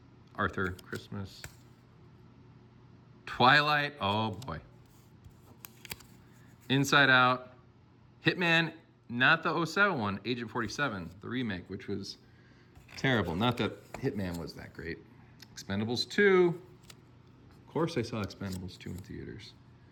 Arthur Christmas. Twilight. Oh boy. Inside Out. Hitman. Not the 07 one. Agent 47, the remake, which was terrible. Not that Hitman was that great. Expendables 2. Of course I saw Expendables 2 in theaters.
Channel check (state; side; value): identical; both; correlation 1.00